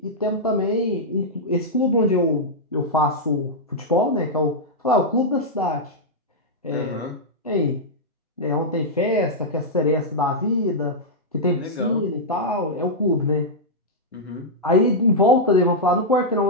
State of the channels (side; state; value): both; normal; correlation -0.06